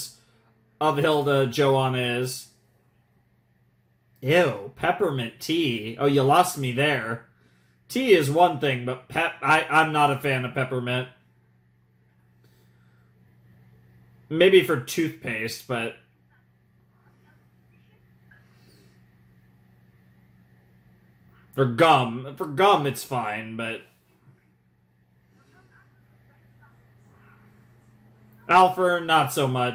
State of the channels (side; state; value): both; identical; correlation 1.00